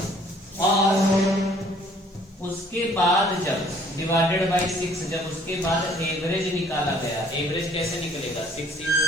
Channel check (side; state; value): both; normal; correlation 0.58